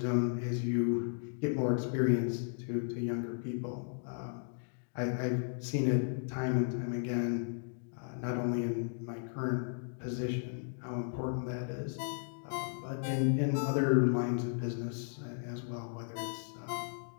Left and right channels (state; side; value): silent; right; digital silence